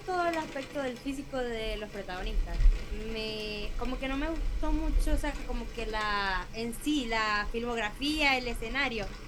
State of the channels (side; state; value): both; identical; correlation 1.00